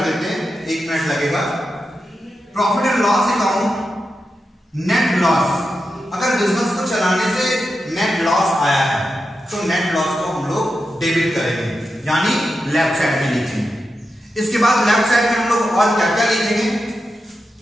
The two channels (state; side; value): normal; both; correlation 0.89